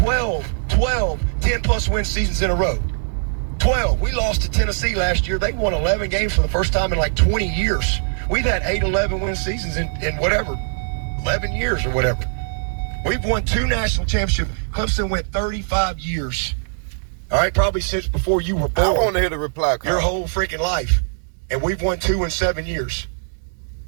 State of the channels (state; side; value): silent; left; 64 dB below the other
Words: 10-plus win seasons in a row. 12. We lost to Tennessee last year. They won 11 games for the first time in like 20 years. We've had 8 11 win seasons in whatever, 11 years or whatever. We've won 2 national championships. Clemson went 35 years. All right, probably since before you were born. I want to hear the reply call. Your whole freaking life. And we've won 2 in 7 years.